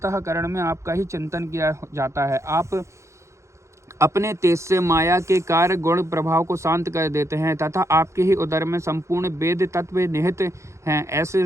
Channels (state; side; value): late; left; 0.14 ms